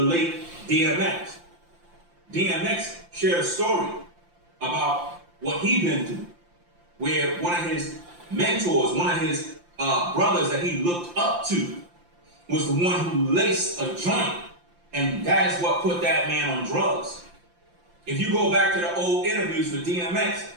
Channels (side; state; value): left; late; 5.8 ms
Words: late DMX. DMX shared a story about what he'd been through, where one of his mentors, one of his brothers that he looked up to was the one who laced a joint, and that is what put that man on drugs. If you go back to the old interviews with DMX,